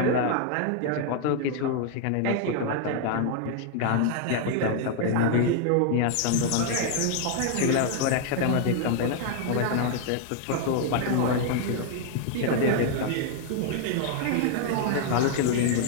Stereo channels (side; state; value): both; different; correlation 0.00